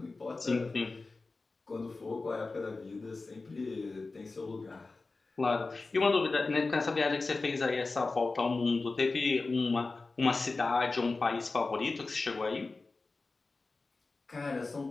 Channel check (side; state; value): right; quieter; 3.7 dB